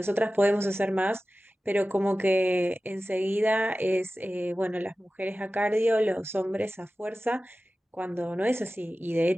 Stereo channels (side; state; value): both; normal; correlation 0.95